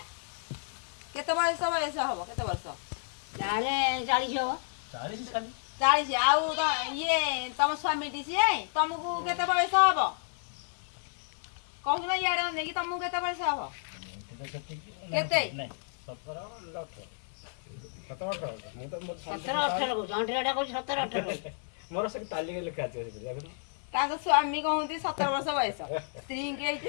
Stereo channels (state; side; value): silent; right; 57 dB below the other